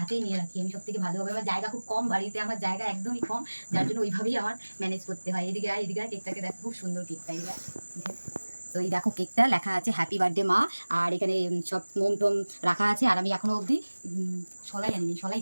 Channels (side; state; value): both; inverted; correlation -1.00